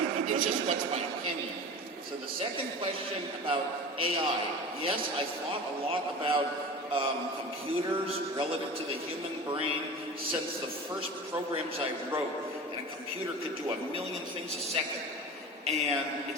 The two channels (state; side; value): normal; both; correlation 0.34